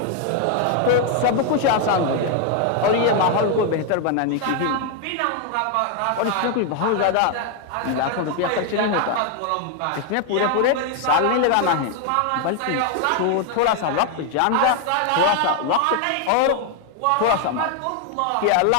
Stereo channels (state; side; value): different; both; correlation 0.01